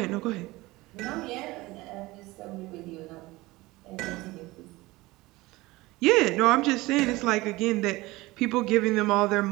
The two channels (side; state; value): left; quieter; 20.4 dB